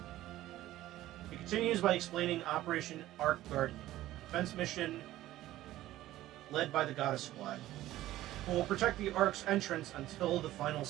He continues by explaining Operation Ark Guardian, a defense mission led by the Goddess Squad. who will protect the Ark's entrance until the final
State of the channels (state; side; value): quieter; left; 14.9 dB